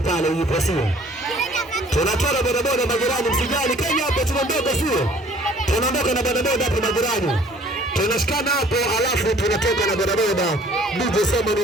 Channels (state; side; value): normal; both; correlation 0.55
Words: pale yupo sio? Tunatoa na bodaboda majirani, msijali. Kenya hapo tunaondoka sio? Tunaondoka na bodaboda hapo majirani. Tunashikana hapo alafu tunatoka na bodaboda. DJ Simon